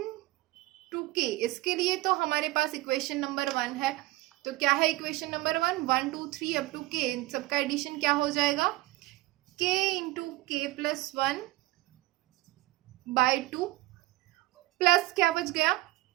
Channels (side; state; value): left; quieter; 19.2 dB